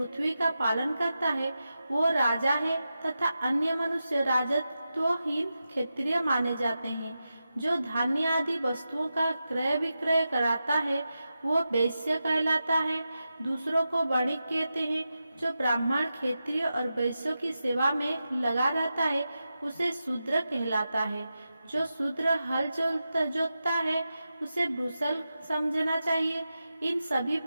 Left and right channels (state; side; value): inverted; both; correlation -0.91